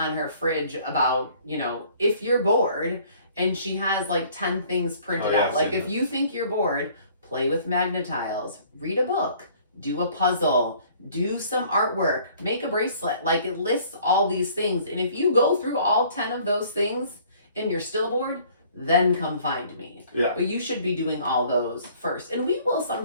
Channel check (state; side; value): inverted; both; correlation -0.56